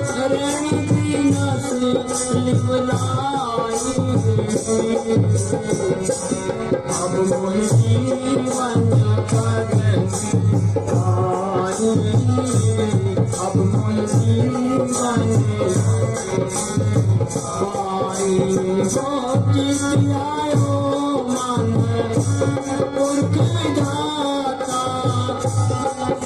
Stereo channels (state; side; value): identical; both; correlation 1.00